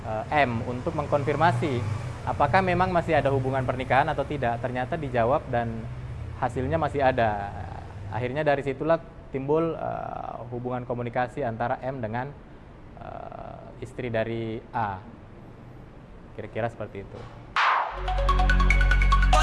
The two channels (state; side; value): identical; both; correlation 1.00